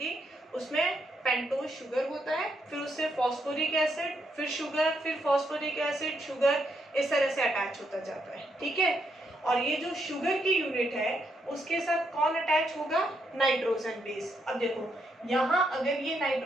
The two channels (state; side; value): normal; both; correlation 0.78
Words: उसमें पेंटोज शुगर होता है, फिर उससे फॉस्फोरिक एसिड, फिर शुगर, फिर फॉस्फोरिक एसिड, शुगर, इस तरह से अटैच होता जाता है। ठीक है, और ये जो शुगर की यूनिट है उसके साथ कौन अटैच होगा, नाइट्रोजन बेस। अब देखो यहाँ अगर ये